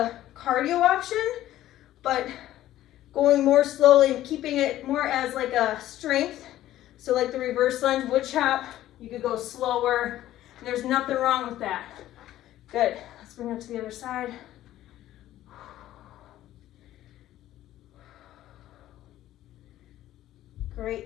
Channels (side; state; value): right; quieter; 13.8 dB